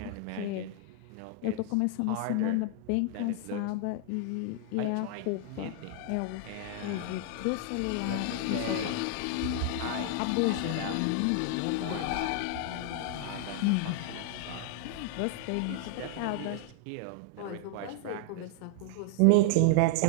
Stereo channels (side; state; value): both; different; correlation 0.00